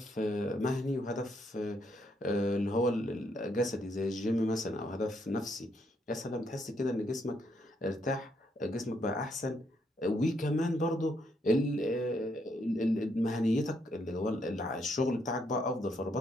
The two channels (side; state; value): both; normal; correlation 0.75